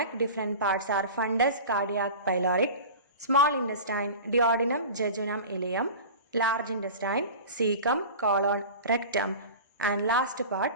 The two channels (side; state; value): both; inverted; correlation -0.35